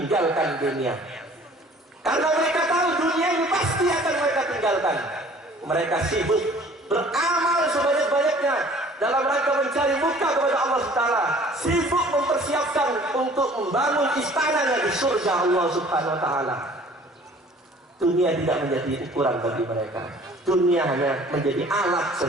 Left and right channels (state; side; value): normal; both; correlation 0.51